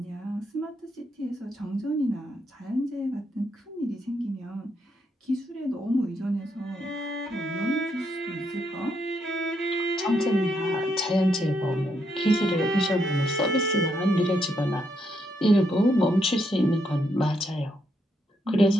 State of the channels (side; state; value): both; normal; correlation 0.77